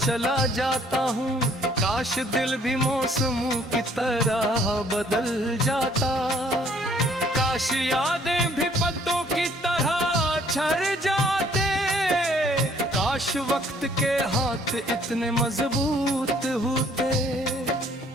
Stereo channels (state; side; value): normal; both; correlation 0.61